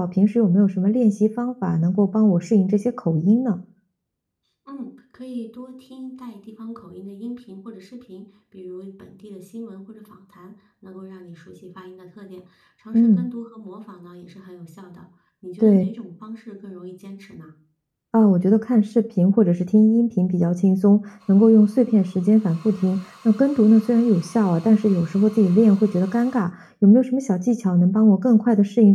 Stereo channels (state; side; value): identical; both; correlation 1.00